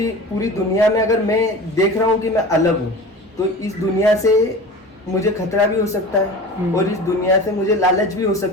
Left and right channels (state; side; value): normal; both; correlation 0.35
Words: दुनिया में अगर मैं देख रहा हूं कि मैं अलग हूं तो इस दुनिया से मुझे खतरा भी हो सकता है और इस दुनिया से मुझे लालच भी हो